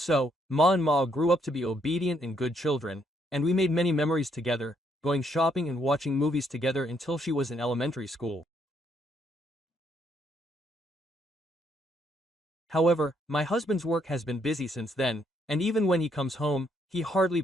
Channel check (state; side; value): normal; both; correlation 0.72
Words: Ma and Ma grew up to be obedient and good children, and we made many memories together, going shopping and watching movies together until she was in elementary school. However, my husband's work has been busy since then, and even when he comes home, he hardly